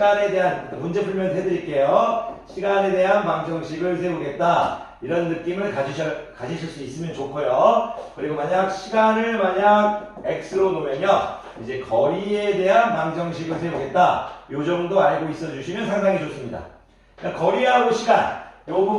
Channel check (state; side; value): identical; both; correlation 1.00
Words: 대한 문제 풀면 해드릴게요. 시간에 대한 방정식을 세우겠다. 이런 느낌을 가지실 수 있으면 좋고요. 그리고 시간을 x로 놓으면요, 이제 거리에 대한 방정식을 세우겠다. 요 정도 알고 있어 주시면 상당히 좋습니다. 그러니까 거리하고 시간, 요